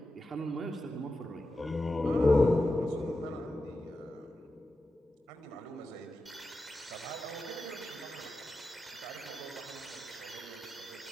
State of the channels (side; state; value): both; normal; correlation 0.91